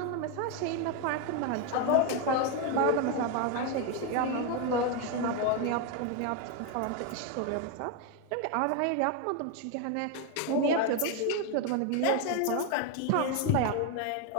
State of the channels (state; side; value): different; both; correlation 0.01